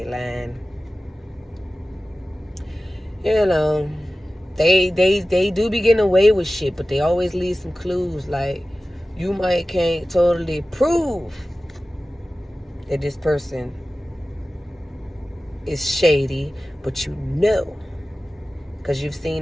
lying. You know, they do be getting away with shit, but they always leave some clues. Like, you can't totally prove that this person is shady, but you know, because you've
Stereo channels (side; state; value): both; normal; correlation 0.96